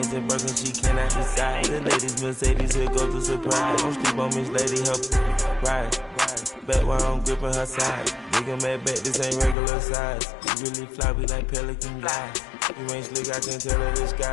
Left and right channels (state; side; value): drops out; right; at 9.6 s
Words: and Birkin, she cannot decide. The ladies Mercedes, here goes the surprise. Don't sleep on Miss Lady, help ride. Back while I'm gripping her side. Nigga mad back, this ain't regular size. You really fly, we like pelican guys. You ain't slick, I can tell her the